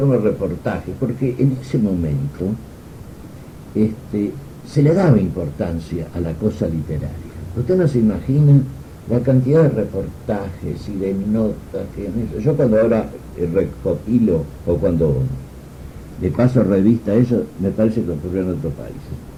reportajes, porque en ese momento se le daba importancia a la cosa literaria. Usted no se imagina la cantidad de reportajes y de notas que... Yo cuando ahora recopilo, o cuando le paso revista a eso, me parece que ocurrió en otros países.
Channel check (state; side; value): identical; both; correlation 1.00